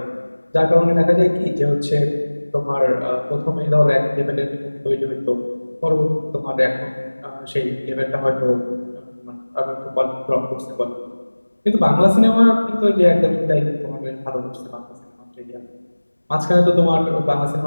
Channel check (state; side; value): inverted; both; correlation -1.00